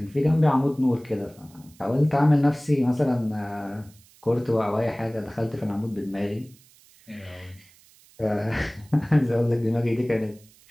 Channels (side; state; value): right; noise; hiss, 27 dB below the sound